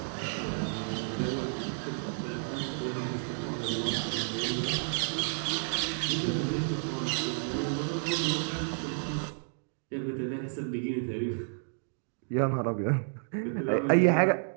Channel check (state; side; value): silent; left; digital silence